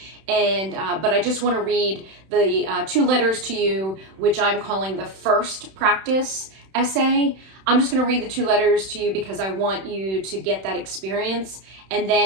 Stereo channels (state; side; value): late; left; 31 ms